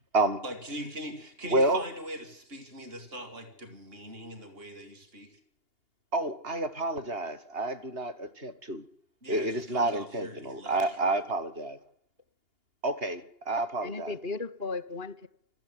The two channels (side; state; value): left; late; 2.8 ms